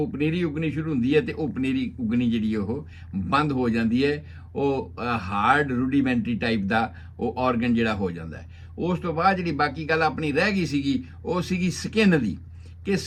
ਪਨੀਰੀ ਉਗਣੀ ਸ਼ੁਰੂ ਹੁੰਦੀ ਹੈ ਤੇ ਉਹ ਪਨੀਰੀ ਉਗਣੀ ਜਿਹੜੀ ਉਹ ਬੰਦ ਹੋ ਜਾਂਦੀ ਹੈ। ਉਹ ਹਾਰਡ ਰੂਡੀਮੈਂਟਰੀ ਟਾਈਪ ਦਾ ਉਹ ਆਰਗਨ ਜਿਹੜਾ ਹੋ ਜਾਂਦਾ ਹੈ। ਉਸ ਤੋਂ ਬਾਅਦ ਜਿਹੜੀ ਬਾਕੀ ਗੱਲ ਆਪਣੀ ਰਹਿ ਗਈ ਸੀਗੀ, ਉਹ ਸੀਗੀ ਸਕਿਨ ਦੀ, ਕਿ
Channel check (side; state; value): both; identical; correlation 1.00